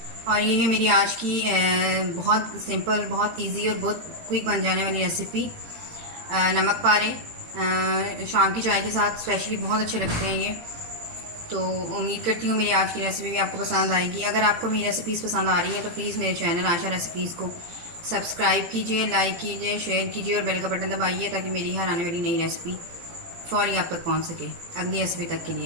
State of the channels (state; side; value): late; left; 18 ms